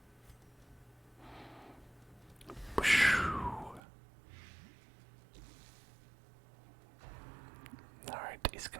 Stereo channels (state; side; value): drops out; left; at 3.8 s